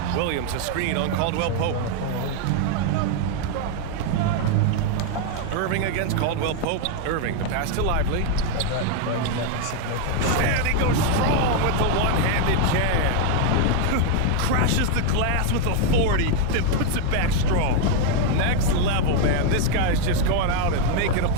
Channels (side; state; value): both; different; correlation 0.01